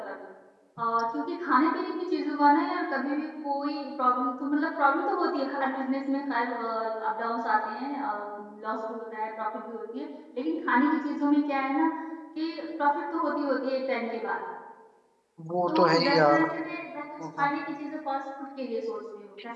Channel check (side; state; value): both; identical; correlation 1.00